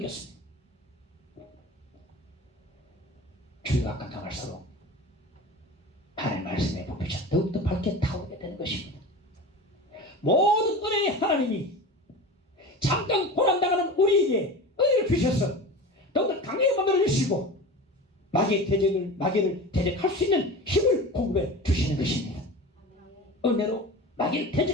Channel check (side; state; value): both; normal; correlation 0.32